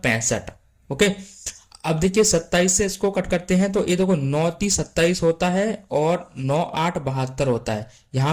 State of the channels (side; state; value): both; identical; correlation 1.00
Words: ओके, अब देखिए 27 से इसको कट करते हैं तो ये देखो 9 30 27 होता है और 9 8 72 होता है।